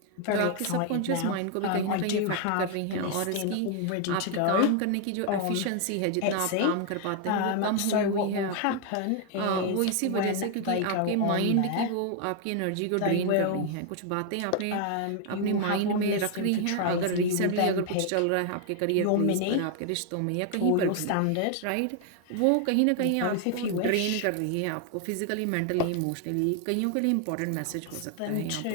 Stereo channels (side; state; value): both; different; correlation 0.00